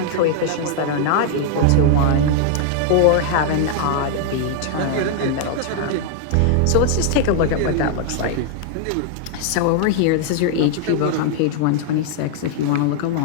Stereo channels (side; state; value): both; different; correlation 0.00